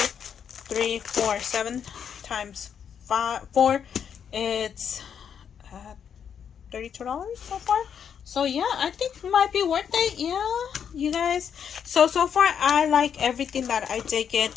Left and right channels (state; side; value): quieter; right; 7.9 dB